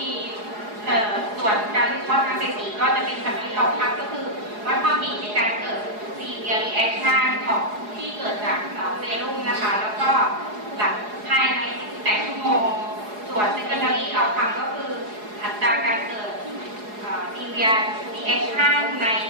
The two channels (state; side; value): late; left; 4.8 ms